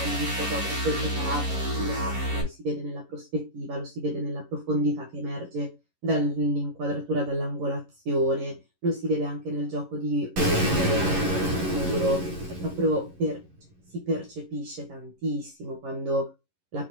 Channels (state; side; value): late; left; 11 ms